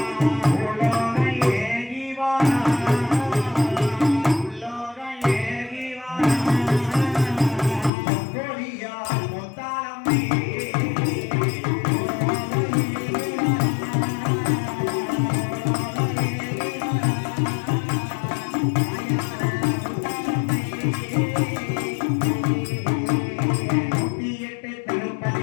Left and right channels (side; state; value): right; drops out; at 7.9 s